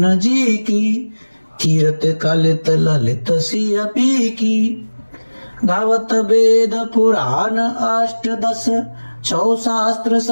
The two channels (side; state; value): both; inverted; correlation -1.00